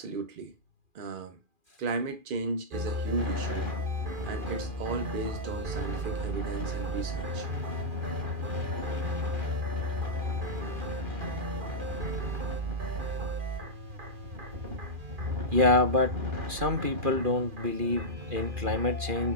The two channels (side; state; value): left; late; 2.4 ms